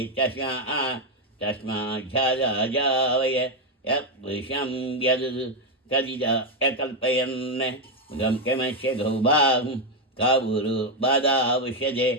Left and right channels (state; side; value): normal; both; correlation 0.05